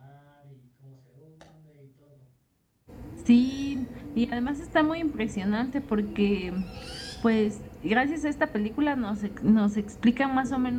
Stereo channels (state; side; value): identical; both; correlation 1.00